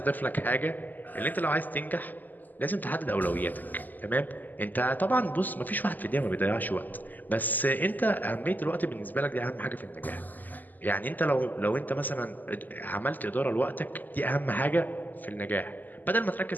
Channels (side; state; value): right; late; 0.085 ms